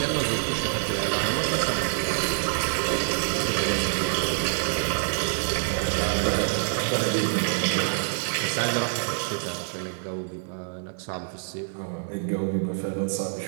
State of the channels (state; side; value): silent; left; digital silence